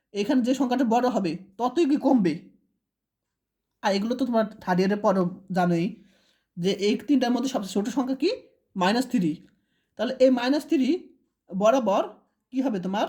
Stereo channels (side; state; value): both; identical; correlation 1.00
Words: এখানে যে সংখ্যাটা বড় হবে ততই কি কমবে। আর এগুলো তো তোমার থার্ড ইয়ারের পরও জানোই যে এই তিনটার মধ্যে সবচেয়ে ছোটো সংখ্যা কি -3, তাহলে এই -3 বরাবর কি হবে তোমার